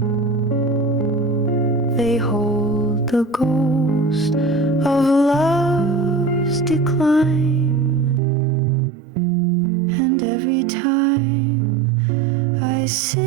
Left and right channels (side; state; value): left; drops out; at 8.2 s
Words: They hold the ghost of love's decline. And every time I